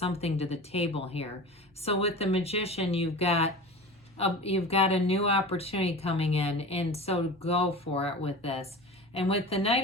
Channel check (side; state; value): both; normal; correlation 0.33